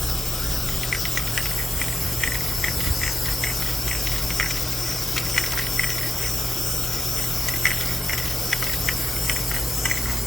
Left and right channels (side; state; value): both; normal; correlation 0.92